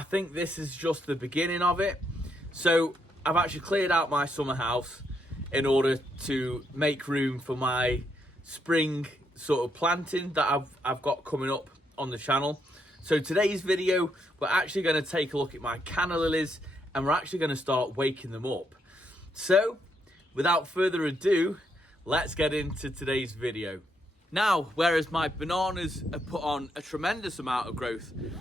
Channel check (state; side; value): normal; both; correlation 0.77